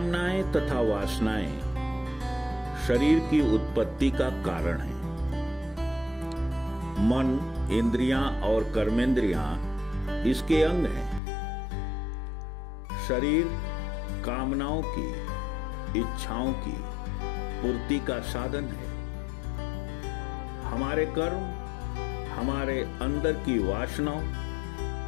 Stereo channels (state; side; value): drops out; right; at 11.2 s